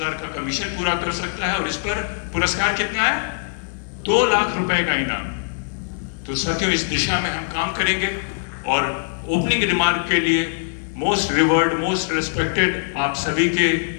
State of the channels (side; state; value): right; silent; digital silence